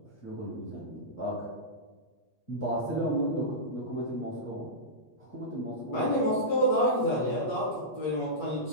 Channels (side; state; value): right; late; 8.3 ms